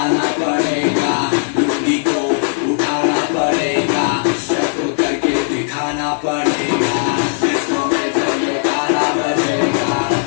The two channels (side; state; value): right; silent; 59 dB below the other